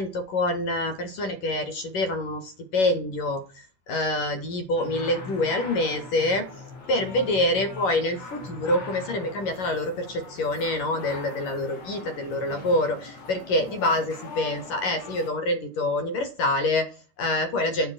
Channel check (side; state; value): right; late; 11 ms